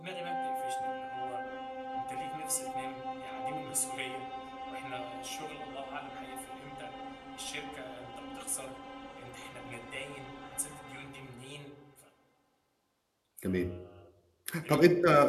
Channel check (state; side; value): identical; both; correlation 1.00